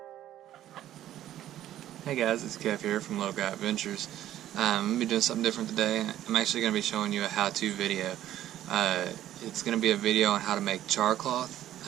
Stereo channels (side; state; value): left; quieter; 12.6 dB